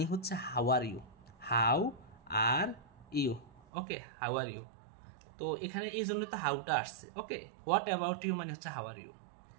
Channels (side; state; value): left; drops out; at 3.6 s